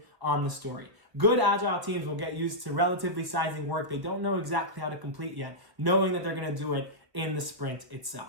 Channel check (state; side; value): late; left; 1.3 ms